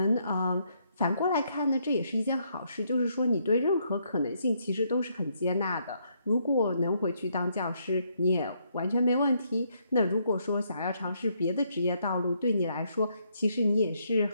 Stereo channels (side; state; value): both; inverted; correlation -0.73